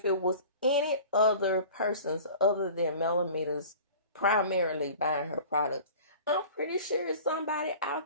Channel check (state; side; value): inverted; both; correlation -0.42